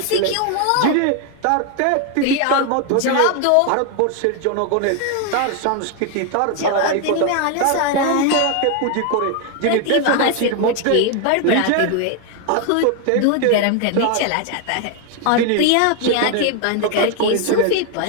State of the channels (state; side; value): different; both; correlation 0.01